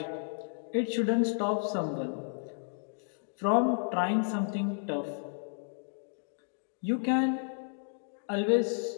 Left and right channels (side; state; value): right; silent; digital silence